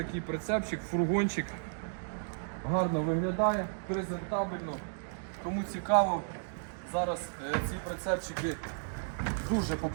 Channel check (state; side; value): silent; left; digital silence